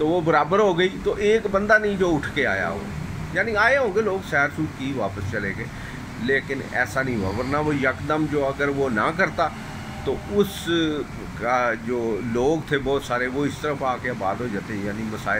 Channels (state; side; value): identical; both; correlation 1.00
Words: وہ برابر ہو گئی، تو ایک بندہ نہیں جو اٹھ کے آیا ہو، یعنی آئے ہوں گے لوگ، سیر سور کی واپس چلے گئے، لیکن ایسا نہیں ہوا۔ ورنہ وہ یکدم جو اگر وہ نہ کرتا تو اس کا جو لوگ تھے بہت سارے، وہ اس طرف آ کے آباد ہو جاتے، یعنی